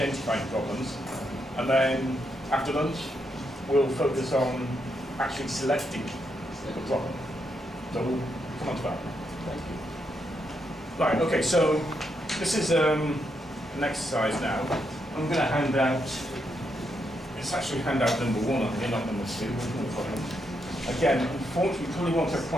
problems, and then after lunch, we'll focus on actually selecting the problem. So we'll come on to that. Thank you. Right, okay, so this is an exercise now. I'm going to hand out, it's actually handout number 1 on here, not number 2, no problem. Again, unfortunately, we probably won't have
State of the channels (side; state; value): both; normal; correlation 0.80